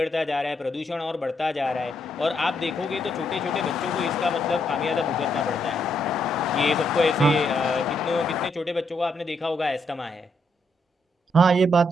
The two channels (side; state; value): both; normal; correlation 0.77